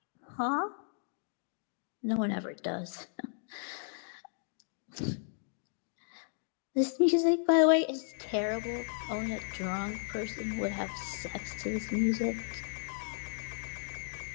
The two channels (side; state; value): right; silent; digital silence